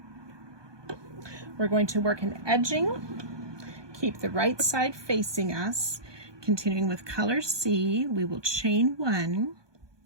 We're going to work an edging. Keep the right side facing us. Continuing with color C, we will chain 1.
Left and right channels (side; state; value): left; late; 1.2 ms